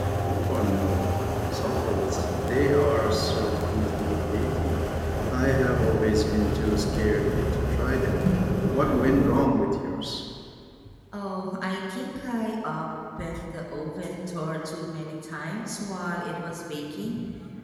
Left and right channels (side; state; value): both; identical; correlation 1.00